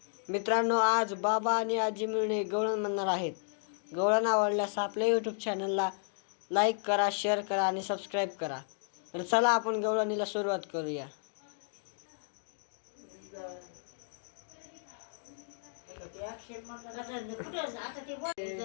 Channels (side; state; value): right; silent; digital silence